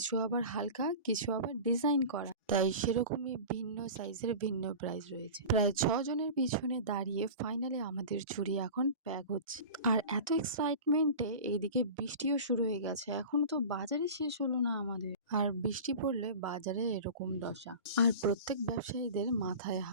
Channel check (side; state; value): both; inverted; correlation -0.34